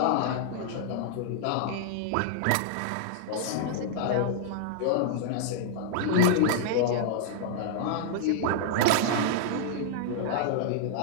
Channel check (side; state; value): both; different; correlation -0.01